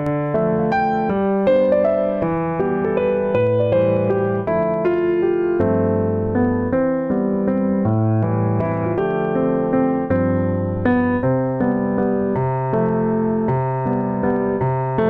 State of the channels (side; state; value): both; identical; correlation 1.00